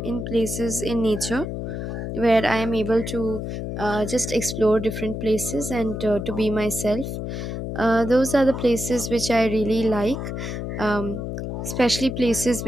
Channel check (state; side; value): noise; left; hum, 5 dB below the sound